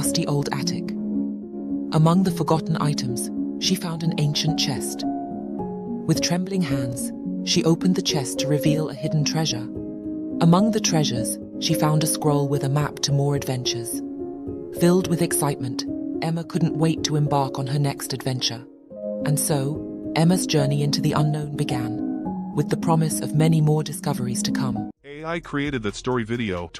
old attic. Among the forgotten items, she found an ancient chest. With trembling hands, she opened the chest to reveal a hidden treasure. Among the treasures, she found a scroll with a map to more adventures. Filled with excitement, Emma couldn't wait to embark on her next adventure. And so, Emma's journey into the unknown began, with the promise of many more discoveries to come. AI created that story video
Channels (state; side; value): identical; both; correlation 1.00